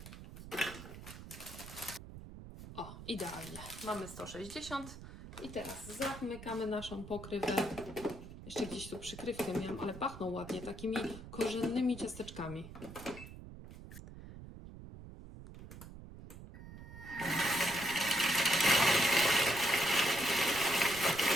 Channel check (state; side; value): noise; right; rumble, 14 dB below the sound